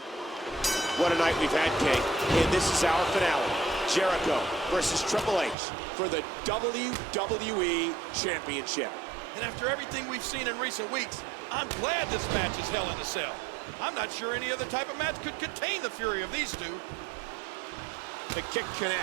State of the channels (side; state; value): left; drops out; at 5.6 s